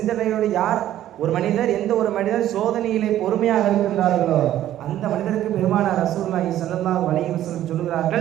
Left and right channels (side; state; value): left; quieter; 12.5 dB